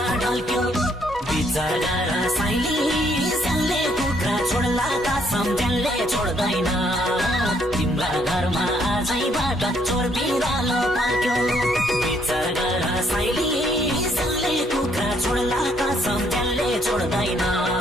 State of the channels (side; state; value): both; normal; correlation 0.69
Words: ढल्क्यो विचार गर साइली सल्ले कुखुरा छोड्ला कसम त्यसले छोड्दैन तिम्रा घरमा आजैबाट चोर बिरालो बल्क्यो विचार गर साइली सल्ले कुखुरा छोड्ला कसम त्यसले छोड्दैन